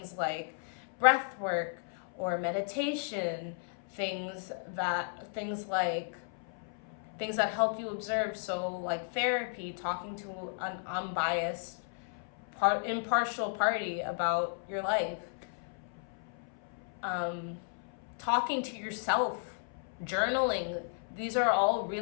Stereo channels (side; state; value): right; silent; 55 dB below the other